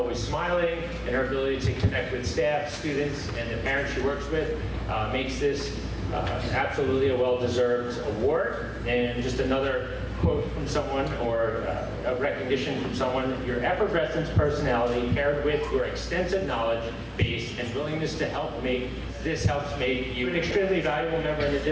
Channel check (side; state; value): both; identical; correlation 1.00